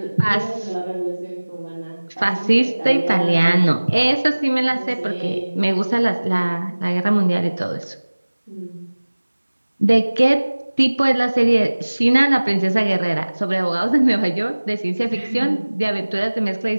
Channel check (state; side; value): inverted; both; correlation -1.00